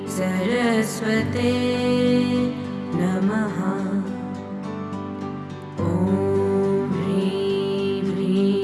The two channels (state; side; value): identical; both; correlation 1.00